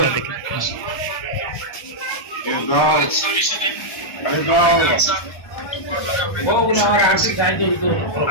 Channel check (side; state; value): right; late; 1.3 ms